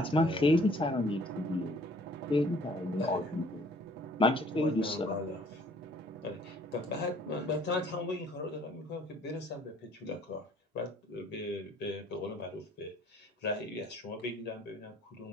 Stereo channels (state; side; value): normal; both; correlation 0.57